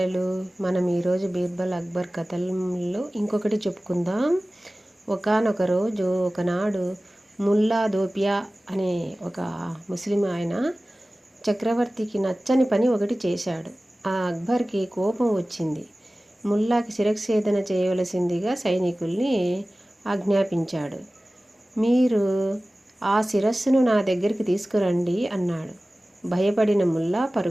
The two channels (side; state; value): both; normal; correlation 0.97